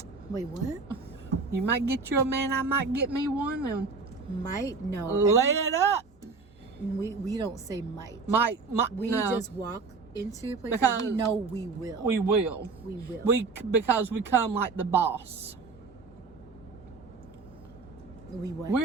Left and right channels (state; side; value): quieter; left; 4.3 dB